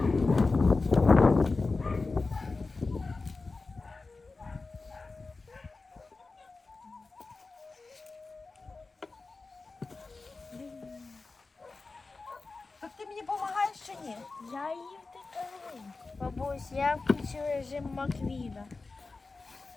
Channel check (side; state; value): right; quieter; 3.8 dB